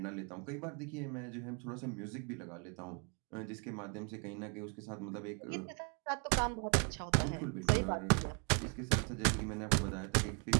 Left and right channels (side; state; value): left; quieter; 36.3 dB